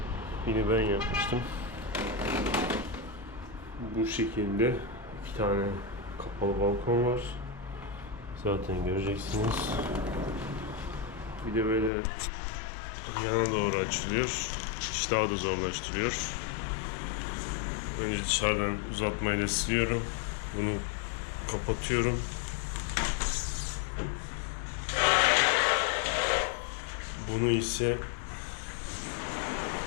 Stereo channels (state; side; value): drops out; right; at 11.9 s